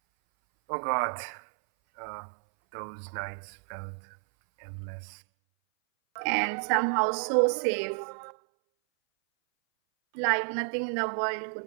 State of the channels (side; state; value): left; silent; 57 dB below the other